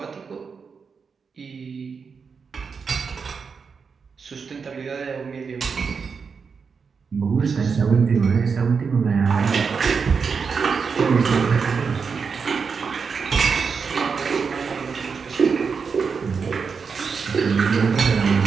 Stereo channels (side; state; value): left; quieter; 5.6 dB